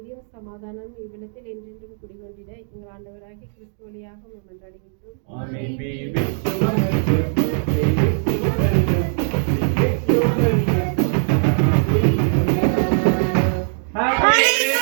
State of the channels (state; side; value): silent; left; digital silence